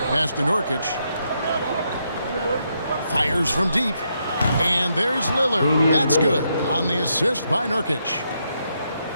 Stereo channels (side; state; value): both; inverted; correlation -0.79